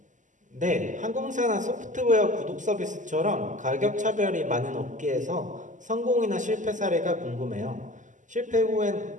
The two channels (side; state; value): left; late; 0.37 ms